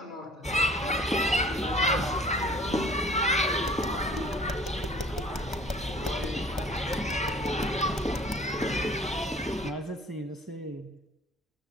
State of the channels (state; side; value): normal; both; correlation 0.51